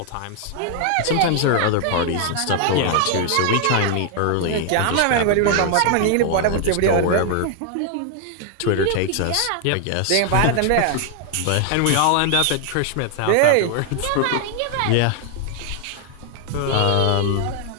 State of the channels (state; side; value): different; both; correlation 0.00